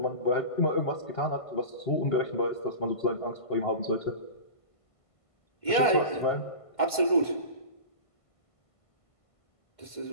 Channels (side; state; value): right; late; 1.5 ms